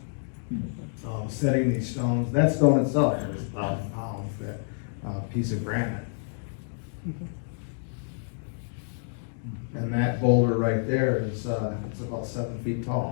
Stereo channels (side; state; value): right; silent; digital silence